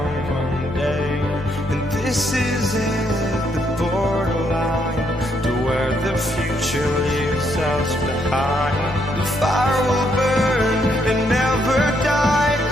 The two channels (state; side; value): noise; left; hum, 20 dB below the sound